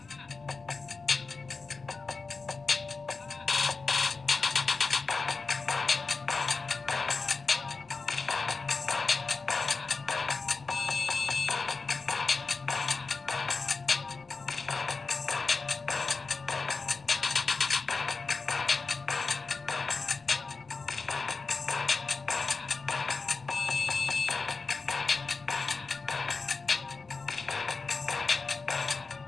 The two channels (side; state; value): right; quieter; 4.3 dB